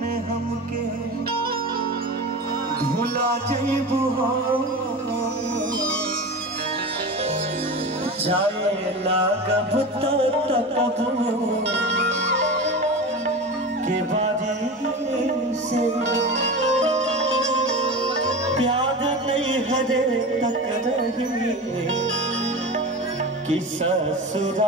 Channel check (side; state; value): both; normal; correlation 0.28